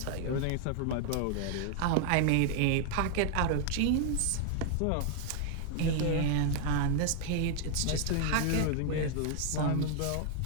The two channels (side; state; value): both; different; correlation 0.00